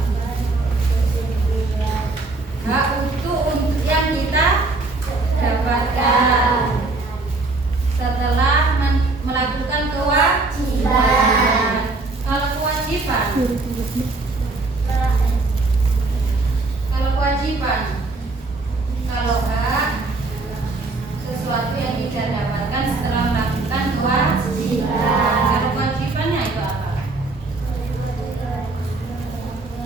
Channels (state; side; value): quieter; left; 3.4 dB